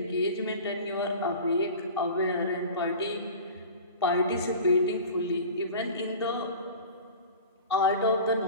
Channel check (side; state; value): both; inverted; correlation -0.38